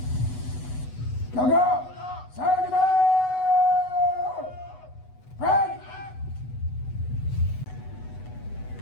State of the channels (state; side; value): late; right; 8.1 ms